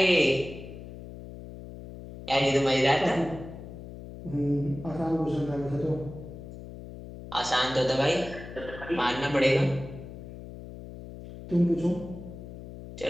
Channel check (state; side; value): noise; left; hum, 13 dB below the sound